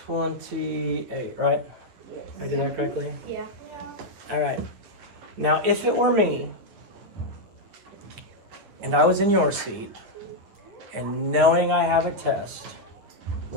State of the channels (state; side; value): late; left; 9.7 ms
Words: 28, right? I did that correctly? Yeah. All right. Now, if it were me, and I was in your seat, and knowing I have a test,